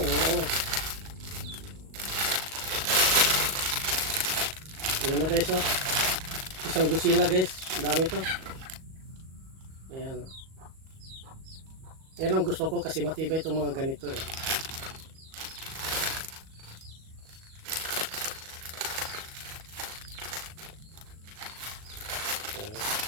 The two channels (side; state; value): left; late; 38 ms